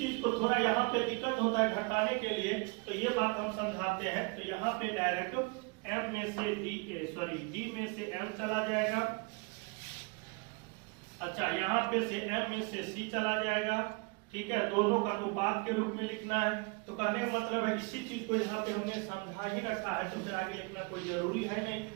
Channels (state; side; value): quieter; left; 30.2 dB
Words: को थोड़ा यहाँ पे दिक्कत होता है घटाने के लिए, तो ये बात हम समझाते हैं। तो यहाँ पे डायरेक्ट M में से D में से M चला जाएगा। अच्छा, यहाँ पे से M में से C चला जाएगा, ठीक है, दोनों का अनुपात के रूप में लिखना है। तो कहने का मतलब है इसी चीज को यहाँ पे हमने समझा ही रखा है, तो फिर आगे लिखना कोई जरूरी है नहीं,